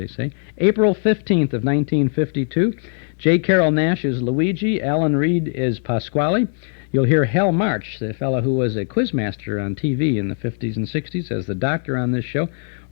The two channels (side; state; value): right; silent; 56 dB below the other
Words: say. April 15th of 1952. J. Carroll Naish is Luigi. Alan Reed is Pasquale. You'll hear Hal March, the fellow who was a quizmaster on TV in the 50s and 60s, as the doctor on this show.